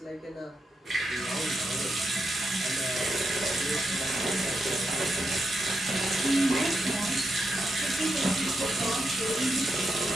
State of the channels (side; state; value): both; normal; correlation 0.84